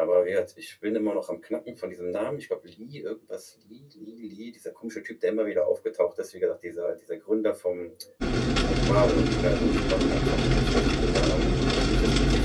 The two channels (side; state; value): both; identical; correlation 1.00